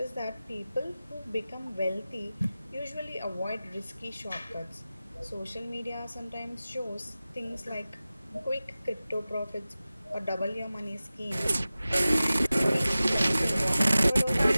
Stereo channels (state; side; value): inverted; both; correlation -0.96